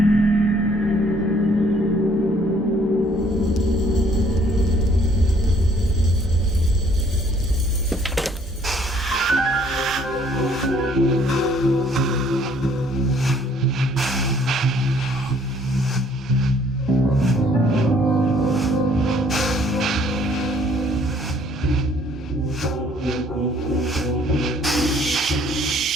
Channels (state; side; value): normal; both; correlation 0.61